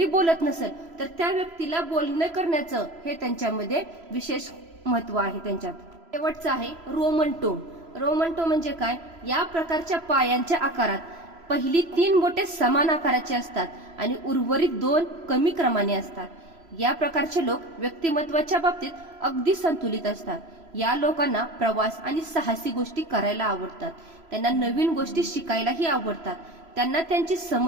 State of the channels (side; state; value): left; late; 3.0 ms